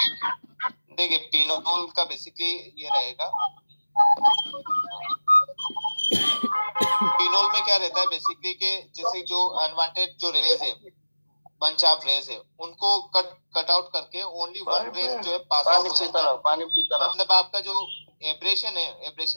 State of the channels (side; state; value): both; inverted; correlation -1.00